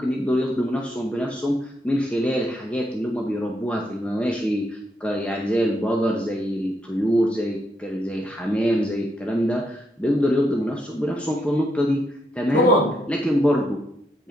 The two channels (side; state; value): both; normal; correlation 0.79